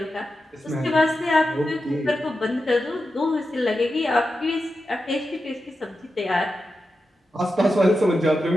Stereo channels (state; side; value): normal; both; correlation 0.90